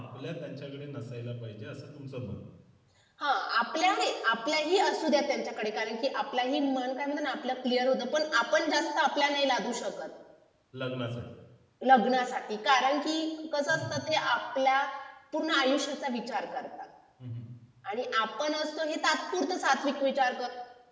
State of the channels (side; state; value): both; identical; correlation 1.00